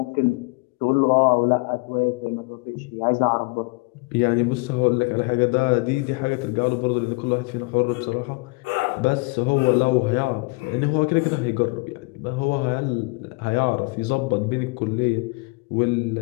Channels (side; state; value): right; quieter; 28.3 dB